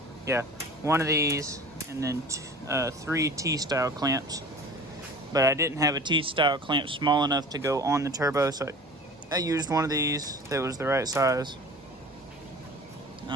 yeah, one of these, and then 3 T-style clamps. But I didn't have a T-style clamp small enough to go on the turbo, so I used one of these that was the right size.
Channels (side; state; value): both; normal; correlation 0.41